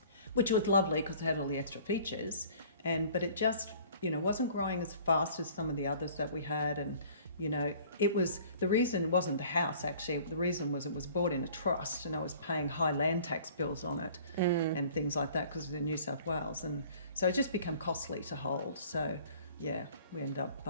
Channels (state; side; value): inverted; both; correlation -0.50